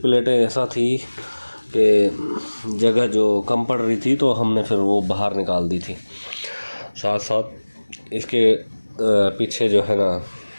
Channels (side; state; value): both; inverted; correlation -1.00